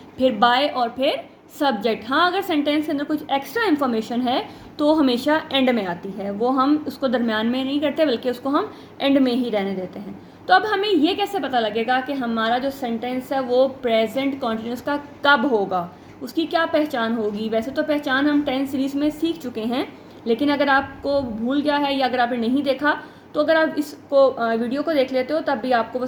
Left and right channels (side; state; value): both; identical; correlation 1.00